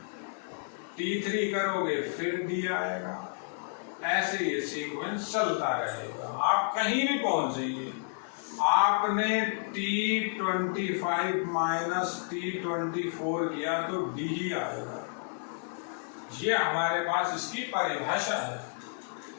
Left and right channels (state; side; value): silent; right; 57 dB below the other